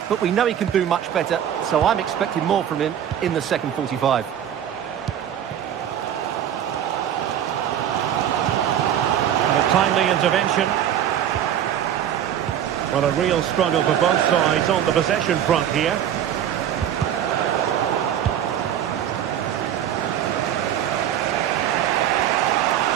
But we know he can do much better, so I'm expecting more from him in the second 45. And a timely intervention. Well, a real struggle for both sides on the possession front here.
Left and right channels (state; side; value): quieter; left; 10.1 dB